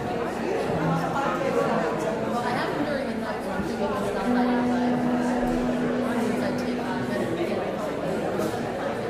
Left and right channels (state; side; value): identical; both; correlation 1.00